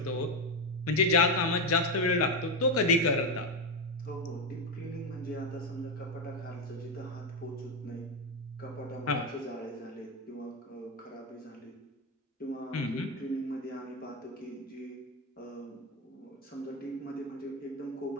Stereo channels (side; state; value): both; normal; correlation 0.09